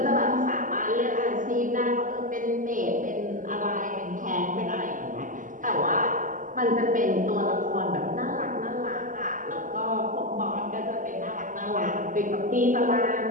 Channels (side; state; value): left; late; 0.38 ms